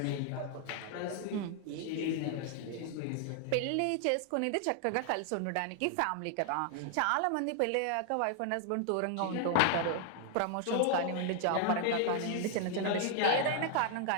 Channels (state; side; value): different; both; correlation 0.00